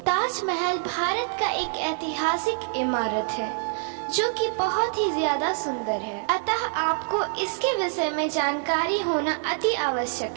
ताजमहल भारत का एक ऐतिहासिक इमारत है जो कि बहुत ही ज्यादा सुंदर है, अतः आपको इसके विषय में जानकारी होना अति आवश्यक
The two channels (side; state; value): left; silent; digital silence